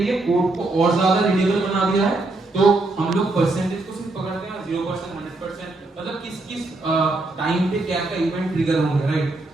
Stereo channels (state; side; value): quieter; left; 3.0 dB